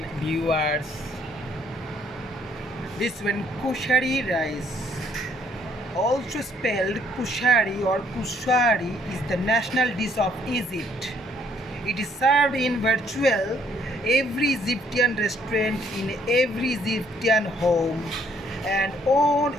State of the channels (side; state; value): both; normal; correlation 0.66